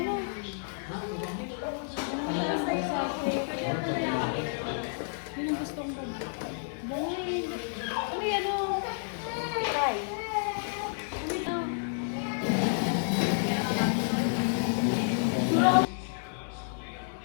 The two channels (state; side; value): silent; right; digital silence